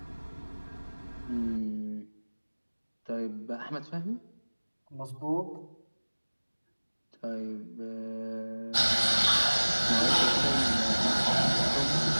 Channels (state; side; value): inverted; both; correlation -1.00